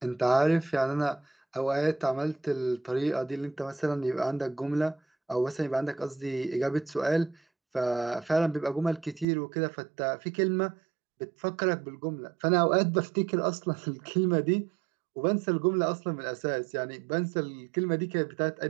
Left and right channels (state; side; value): drops out; left; at 9.2 s